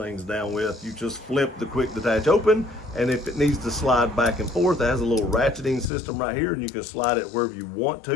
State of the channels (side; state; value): right; drops out; at 5.9 s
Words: down with. You just flip the quick detach open, and if it needs to slide back and forth, it has a little ratcheting system right here, and you can slide it wherever you want